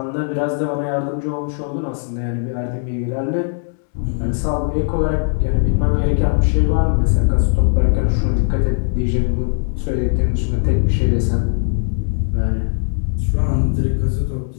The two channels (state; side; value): silent; right; 65 dB below the other